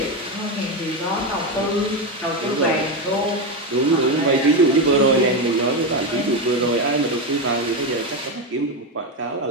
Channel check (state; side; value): normal; both; correlation 0.12